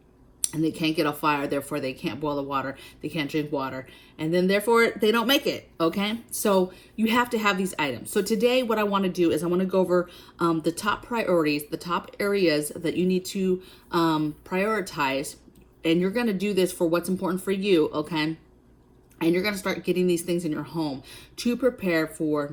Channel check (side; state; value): both; identical; correlation 1.00